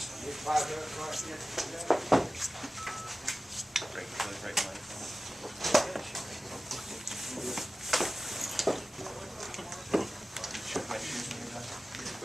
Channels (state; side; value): normal; both; correlation 0.96